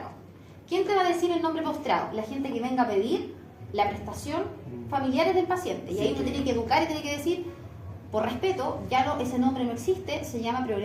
¿Quién te va a decir el nombre postrado? La gente que venga a pedir la prestación, familiares del paciente. Y ahí uno tiene que educar y tiene que decir, Por respeto, ya no, ese nombre no existe, se llama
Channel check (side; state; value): both; identical; correlation 1.00